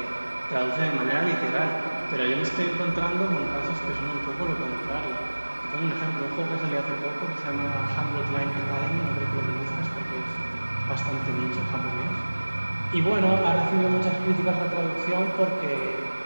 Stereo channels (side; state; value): both; inverted; correlation -1.00